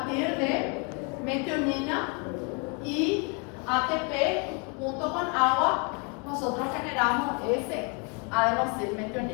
de metionina y ATP junto con agua, nosotros generamos ese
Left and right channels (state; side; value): quieter; right; 34.6 dB